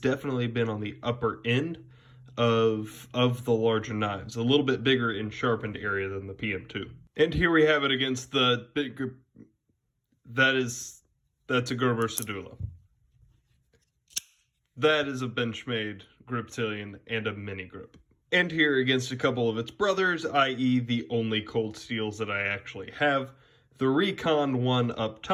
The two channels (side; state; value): both; identical; correlation 1.00